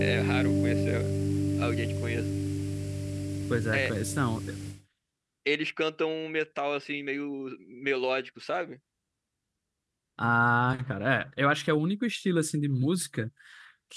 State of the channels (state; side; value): identical; both; correlation 1.00